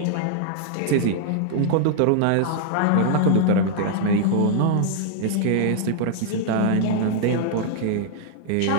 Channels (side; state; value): both; different; correlation -0.01